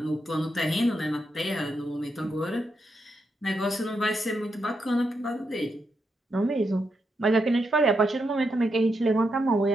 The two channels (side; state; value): both; normal; correlation 0.83